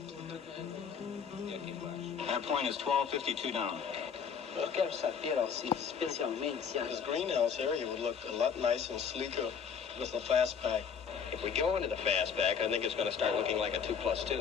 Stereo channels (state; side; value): quieter; right; 6.9 dB